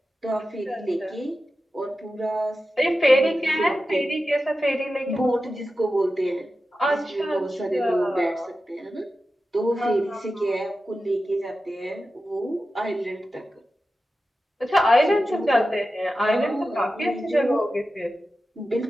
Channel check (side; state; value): both; normal; correlation 0.92